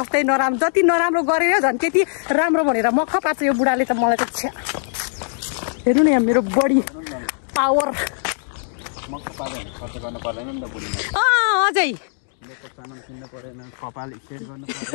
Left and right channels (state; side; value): silent; right; digital silence